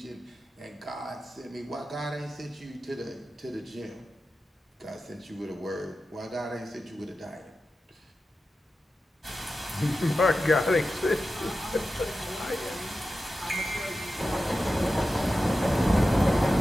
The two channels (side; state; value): both; normal; correlation 0.92